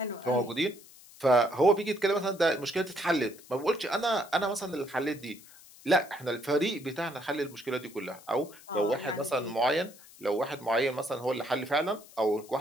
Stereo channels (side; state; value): left; noise; hiss, 22 dB below the sound